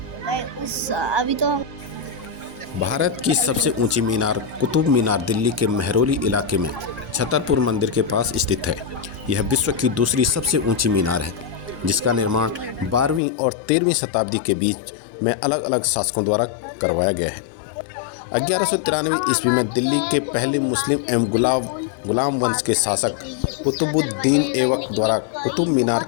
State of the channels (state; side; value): drops out; right; at 13.2 s